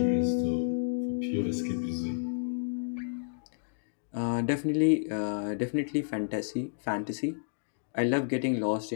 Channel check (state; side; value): silent; right; digital silence